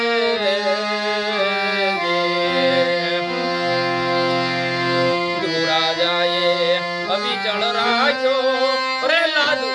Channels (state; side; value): identical; both; correlation 1.00